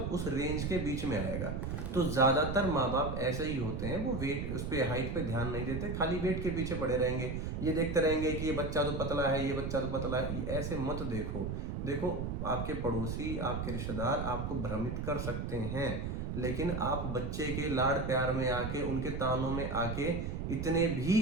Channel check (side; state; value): right; noise; rumble, 3 dB below the sound